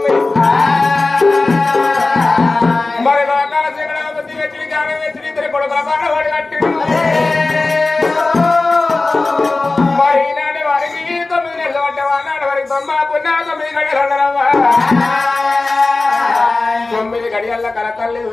మరి లోకాల శ్రీగణపతి వెచ్చిడి జ్ఞానం వెచ్చిడి ఇద్దరి కొడుకుల పాడవాడి కట్టి మరి ఈనాటి వారికి 9 నెలలు పట్టే వానాడు వారికి 9 గడియలన్నరవ్వ 9 గడియల్ల కలకల్లి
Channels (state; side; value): quieter; right; 3.4 dB